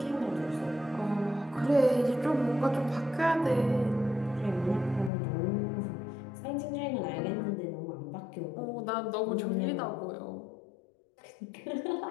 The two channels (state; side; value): drops out; right; at 5.1 s